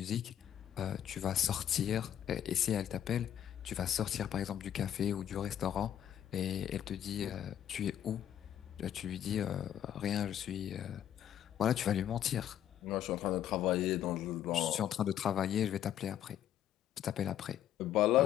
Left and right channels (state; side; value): quieter; right; 10.6 dB